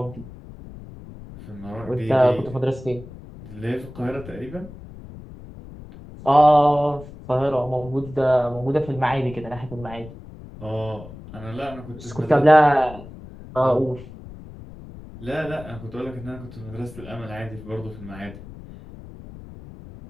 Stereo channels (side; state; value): left; noise; rumble, 16 dB below the sound